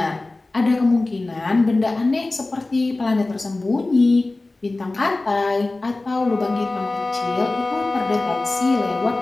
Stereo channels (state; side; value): quieter; right; 3.1 dB